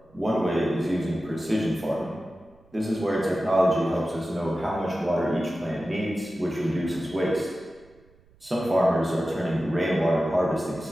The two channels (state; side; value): noise; right; rumble, 30 dB below the sound